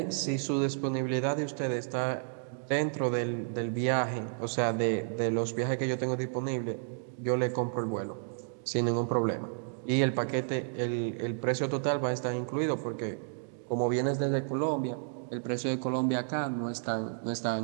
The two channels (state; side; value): silent; left; digital silence